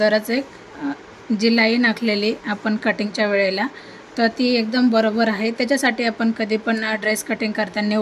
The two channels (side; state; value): both; identical; correlation 1.00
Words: एक जी लाईन आखलेली आपण कटिंगच्या वेळेला तर ती एकदम बरोबर आहे. त्याच्यासाठी आपण कधी पण ड्रेस कटिंग करताना